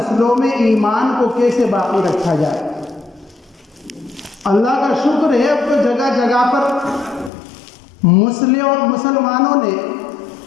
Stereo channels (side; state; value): right; drops out; at 7.3 s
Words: میں ایمان کو کیسے باقی رکھا جائے۔ اللہ کا شکر ہے اب تو جگہ جگہ پر مسلمانوں نے